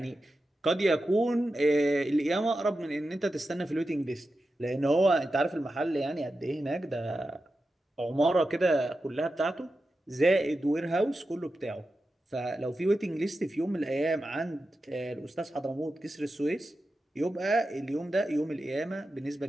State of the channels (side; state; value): both; normal; correlation 0.91